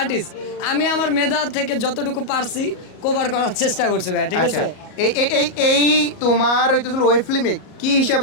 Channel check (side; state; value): right; late; 38 ms